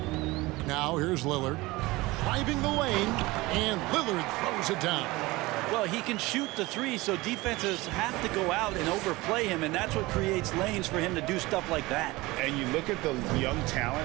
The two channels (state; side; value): quieter; left; 21.0 dB